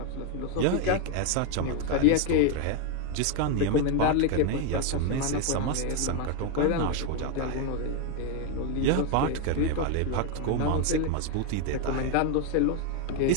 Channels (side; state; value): both; different; correlation 0.01